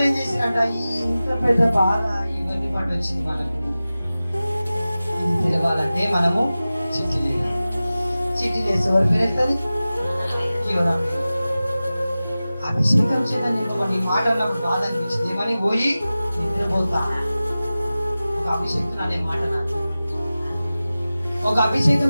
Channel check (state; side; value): inverted; both; correlation -0.96